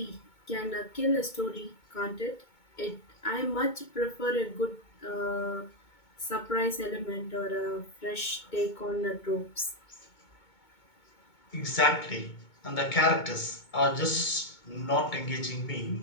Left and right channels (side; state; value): right; late; 2.2 ms